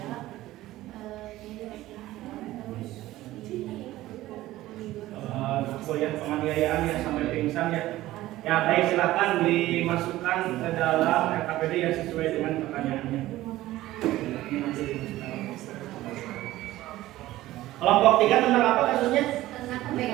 Ya, penganiayaan ya sampai pingsan ya. Ya baik, silakan dimasukkan ke dalam RKPD ya sesuai dengan pertanyaannya. Kelompok 3 tentang apa kasusnya? Tentang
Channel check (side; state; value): left; quieter; 16.0 dB